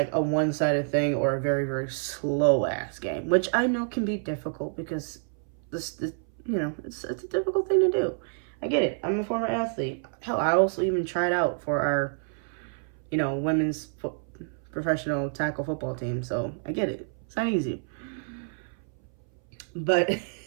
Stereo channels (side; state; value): left; silent; 59 dB below the other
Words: a one-sided thing or a very, very slow-ass game, which I know can be difficult because this it's a difficult thing to do. I get it. I'm a former athlete. Hell, I also even tried out for our, women's professional tackle football team, so I get it. It's not easy. But